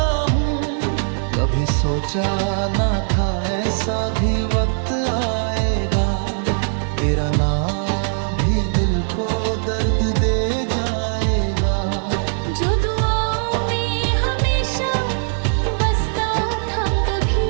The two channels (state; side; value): silent; left; 64 dB below the other